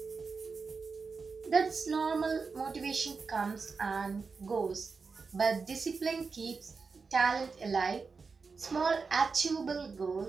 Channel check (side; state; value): left; quieter; 4.8 dB